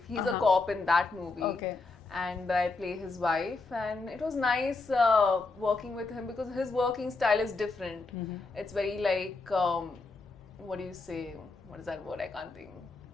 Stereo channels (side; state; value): right; quieter; 3.7 dB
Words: He's a cop in that movie. Okay. And I play his wife, and it was nice working with him because his working style is different. It's very like, what do you say? What is that word? I can't think.